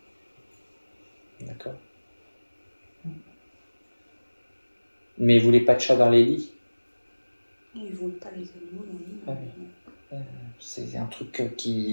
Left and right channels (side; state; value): both; inverted; correlation -1.00